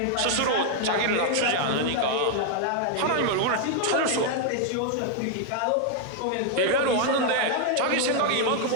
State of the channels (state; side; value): different; both; correlation 0.00